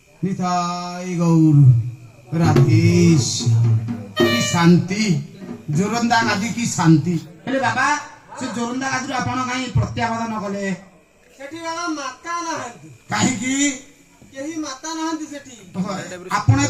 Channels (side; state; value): both; identical; correlation 1.00